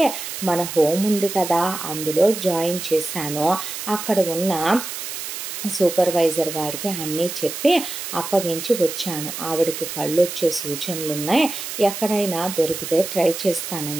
మన హోమ్ ఉంది కదా అందులో జాయిన్ చేశాను. అక్కడ ఉన్న సూపర్వైజర్ గారికి అన్నీ చెప్పి అప్పగించి వచ్చాను. ఆవిడకి కళ్ళు వచ్చే సూచనలు ఉన్నాయి, ఎక్కడైనా దొరికితే ట్రై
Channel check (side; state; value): right; noise; hiss, 7 dB below the sound